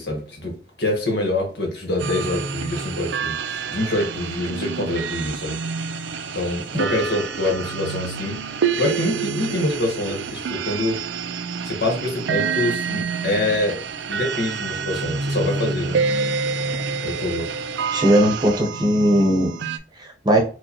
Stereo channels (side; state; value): both; normal; correlation 0.40